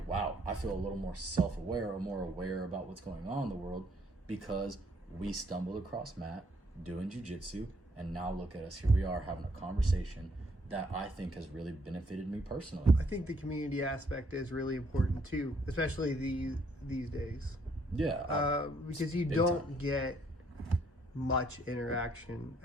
wow, I feel a little more self-aware, or more aware about what's going on in the world, because we stumbled across Matt doing jiu-jitsu, and now look at us, here we are having a conversation that I think has really benefited me personally. I think the community aspect is really important too, especially these days. Yeah. Because you don't get much interaction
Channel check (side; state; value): both; normal; correlation 0.67